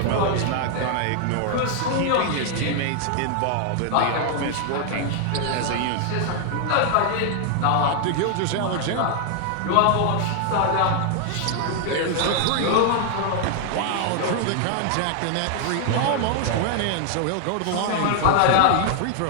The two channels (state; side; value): different; both; correlation 0.00